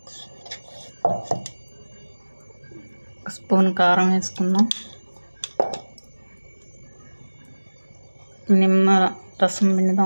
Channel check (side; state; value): both; inverted; correlation -1.00